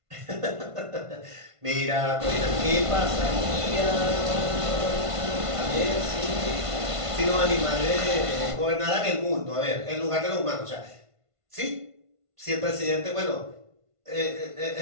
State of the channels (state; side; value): late; left; 1.5 ms